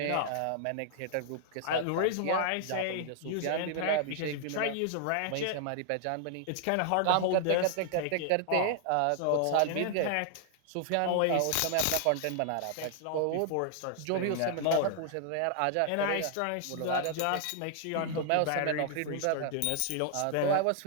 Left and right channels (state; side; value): different; both; correlation 0.00